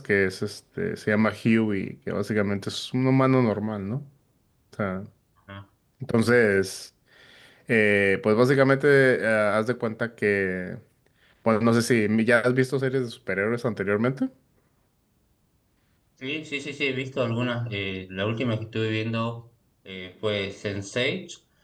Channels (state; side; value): identical; both; correlation 1.00